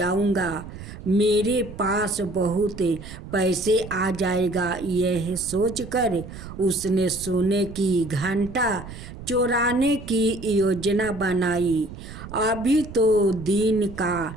मेरे पास बहुत पैसे आ जाएगा। यह सोचकर उसने सोने की घंटा चुराने की योजना बनाई। अभी तो दिन का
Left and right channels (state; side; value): noise; right; rumble, 13 dB below the sound